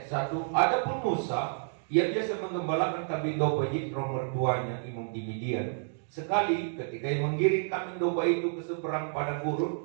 1. Adapun Musa, ia biasa menggembalakan kambing domba Yitro mertuanya, imam di Midian. Sekali ketika ia menggiring kambing domba itu ke seberang padang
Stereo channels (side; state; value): left; silent; digital silence